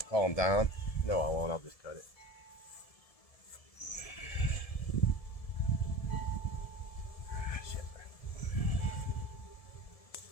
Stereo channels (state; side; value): late; right; 1.7 ms